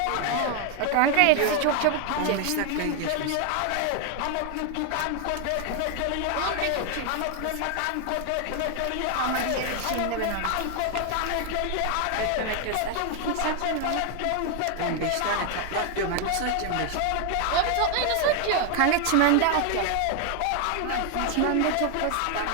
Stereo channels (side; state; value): both; different; correlation 0.01